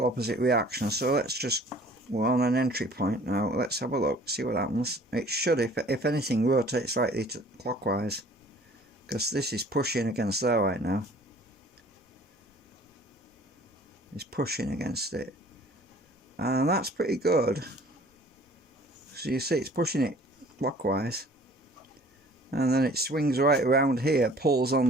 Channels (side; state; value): both; normal; correlation 0.51